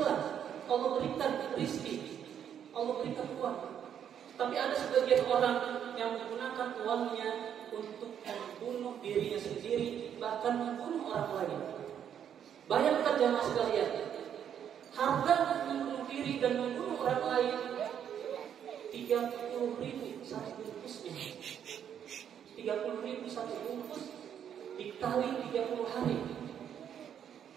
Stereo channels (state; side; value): quieter; left; 9.0 dB